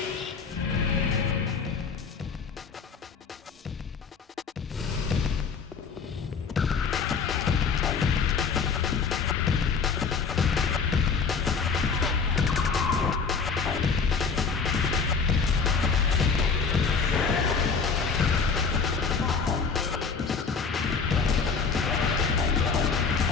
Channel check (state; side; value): quieter; right; 5.4 dB